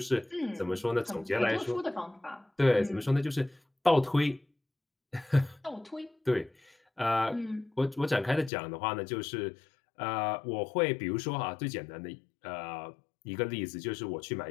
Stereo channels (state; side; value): drops out; right; at 8.5 s